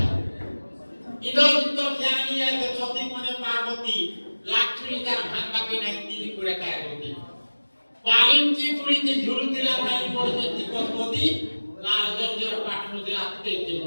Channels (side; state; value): both; inverted; correlation -1.00